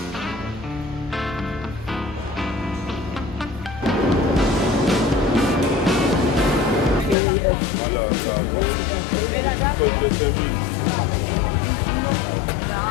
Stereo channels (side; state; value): right; drops out; at 7.2 s